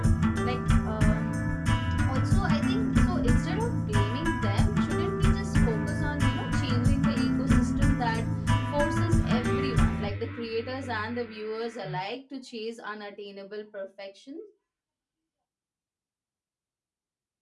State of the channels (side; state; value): both; identical; correlation 1.00